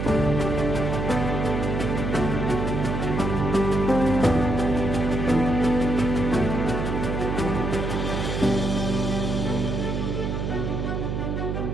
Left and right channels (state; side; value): noise; right; hum, 2 dB below the sound